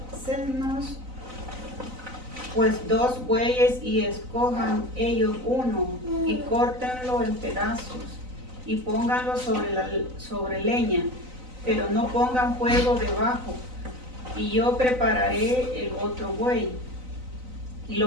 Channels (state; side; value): late; left; 3.9 ms